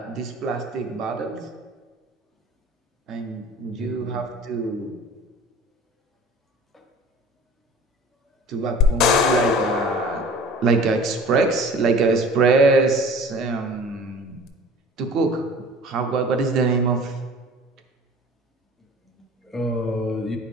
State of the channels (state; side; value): normal; both; correlation 0.44